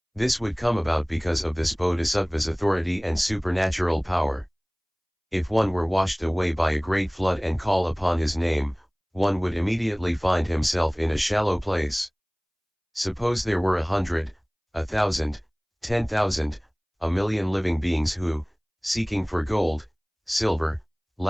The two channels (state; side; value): identical; both; correlation 1.00